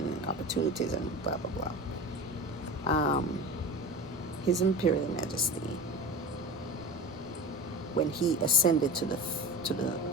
opportunities, and blah, blah, blah. Um, His Imperial Majesty, when he ascended to the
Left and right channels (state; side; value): noise; right; rumble, 23 dB below the sound